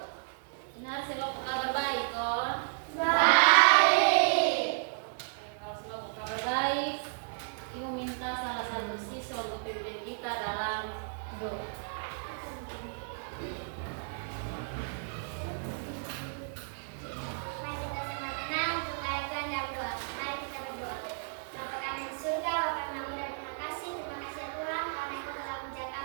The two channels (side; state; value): left; silent; digital silence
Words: Benar, selalu kabar baik, kon? Baik. Kalau selalu kabar baik, Ibu minta salah satu siswa untuk pimpin kita dalam doa. Mari kita sama tenang untuk mengaitkan dalam doa. Mari kita berdoa. Bapa kami di surga, Bapa kami dan terima kasih ya Tuhan karena Engkau telah menjaga